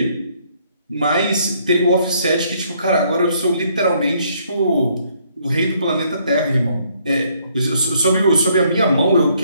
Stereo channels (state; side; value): inverted; both; correlation -0.67